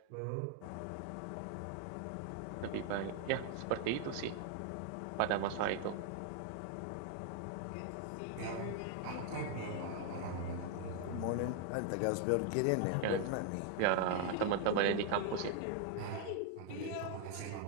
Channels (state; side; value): different; both; correlation 0.00